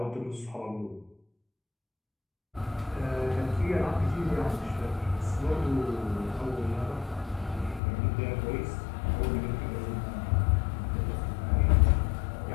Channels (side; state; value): right; drops out; at 7.8 s